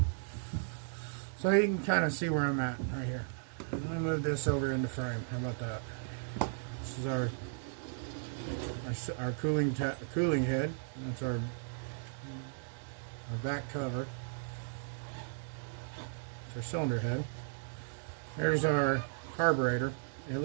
So you can kind of see where I'm at right here. Let me move this over into frame. How about that? This is our cooling head. That's our back cover. It's our cylinder head. Here's our carburetor. It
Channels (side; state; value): left; silent; digital silence